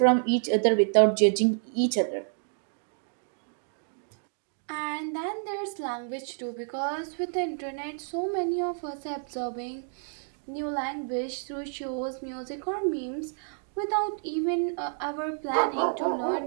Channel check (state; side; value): silent; left; digital silence